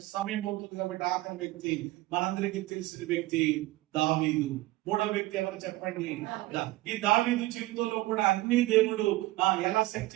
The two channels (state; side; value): quieter; left; 18.4 dB